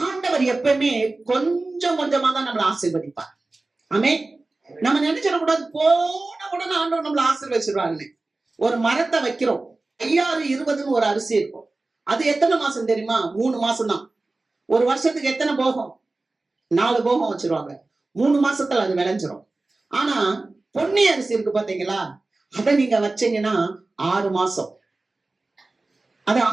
ஆண்டவர் எப்பவுமே கொஞ்சம் கொஞ்சமா தான் நம்மளை ஆசீர்வதிப்பார். ஆமென். நம்ம நினைச்சிடக்கூடாது போன உடனே ஆண்டவர் நம்மளை ஆசீர்வதிச்சிருவாங்கன்னு. ஒரு மரத்தை வைக்கிறோம், 5020 ஒரு அரிசி இருக்கும். அது எத்தனை மாசம் தெரியுமா? 3 மாசம் தான். ஒரு வருஷத்துக்கு எத்தனை போகம்? 4 போகம் வச்சிருவாங்க. 3 மாசத்துல அது விளைஞ்சிரும். ஆனா பொன்னி அரிசி இருக்கு பாத்தீங்களா, அதை நீங்க வச்சீங்கன்னா 6 மாசம். அது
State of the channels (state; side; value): quieter; left; 3.2 dB